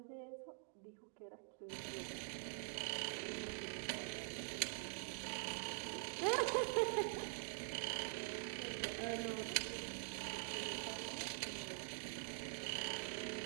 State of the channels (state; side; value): silent; left; digital silence